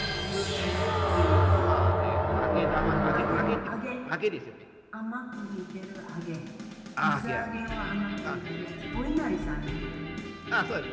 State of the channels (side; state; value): both; identical; correlation 1.00